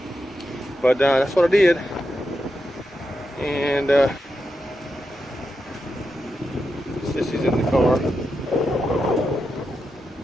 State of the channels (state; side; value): normal; both; correlation 0.87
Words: But that's what I did. And Sissy's in the car.